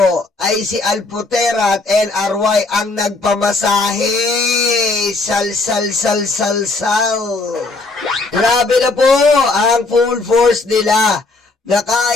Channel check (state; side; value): quieter; right; 3.5 dB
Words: ay si Alpotera at LRY ang nagpamasahe. Sal. Grabe na po ang full force nila na